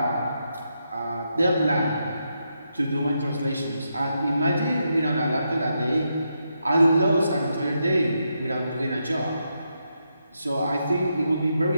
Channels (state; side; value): inverted; both; correlation -0.82